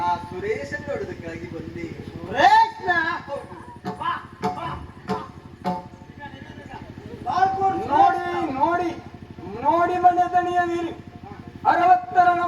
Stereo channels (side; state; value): both; identical; correlation 1.00